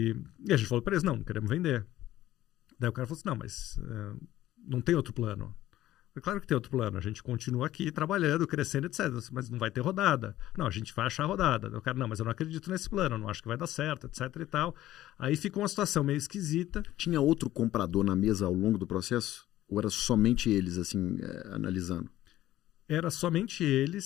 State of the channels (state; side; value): quieter; right; 14.3 dB